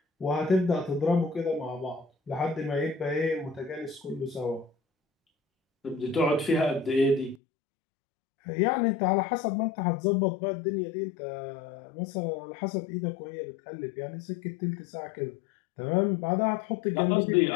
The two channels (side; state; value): right; drops out; at 7.4 s